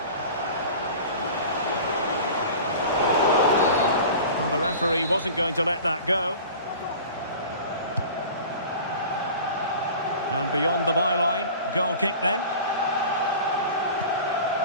Well, the referee wasn't going to let that go. And beyond the byline, goal kick then.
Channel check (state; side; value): inverted; both; correlation -0.39